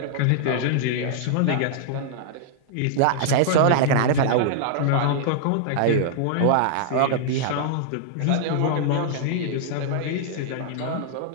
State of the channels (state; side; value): different; both; correlation -0.01